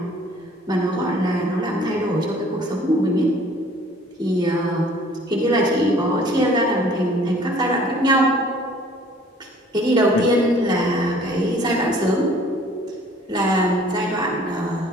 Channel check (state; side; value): normal; both; correlation 0.54